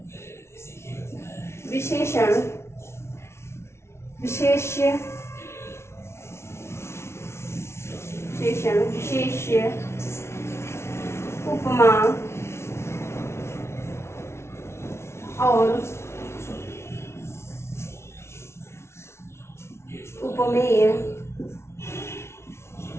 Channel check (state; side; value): late; right; 0.13 ms